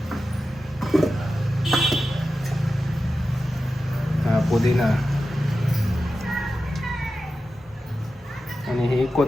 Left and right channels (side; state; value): both; normal; correlation 0.92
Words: हा पुदिना आणि ही